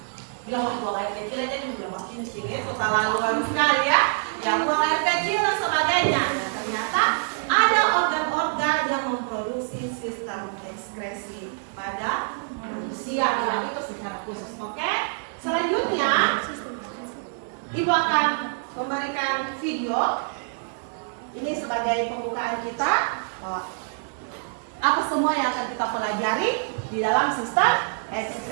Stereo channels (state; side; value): silent; left; 61 dB below the other